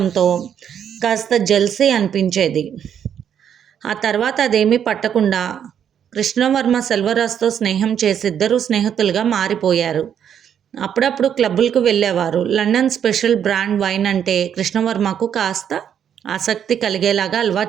కాస్త జెల్సీ అనిపించేది. ఆ తర్వాత అదేమీ పట్టకుండా కృష్ణవర్మ సెల్వరాజ్తో స్నేహం చేసి ఇద్దరూ స్నేహితులుగా మారిపోయారు. అప్పుడప్పుడు క్లబ్బులకు వెళ్ళేవారు. లండన్ స్పెషల్ బ్రాండ్ వైన్ అంటే కృష్ణవర్మకు కాస్త ఆసక్తి కలిగేలాగా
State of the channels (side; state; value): left; quieter; 8.8 dB